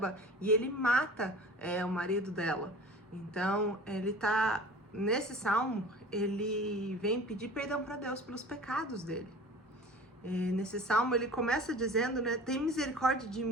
e ele mata o marido dela. Então, nesse salmo, ele vem pedir perdão para Deus pelos pecados dele. Nesse salmo ele começa dizendo, né? Tem misericórdia de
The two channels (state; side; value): normal; both; correlation 0.41